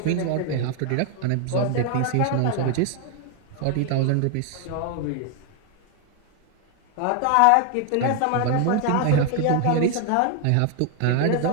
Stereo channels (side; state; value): both; different; correlation 0.01